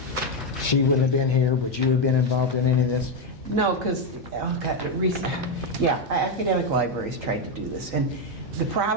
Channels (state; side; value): normal; both; correlation 0.06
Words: She wouldn't have been here. Would you have been involved in any of this? No, because, oh God, academic libraries tried to do this. And the